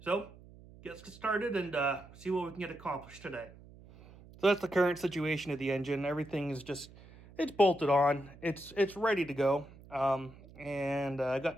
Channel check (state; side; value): noise; right; hum, 21 dB below the sound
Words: let's get started and see what we can get accomplished today. So that's the current situation of the engine. Everything is just, it's bolted on. It's ready to go. And I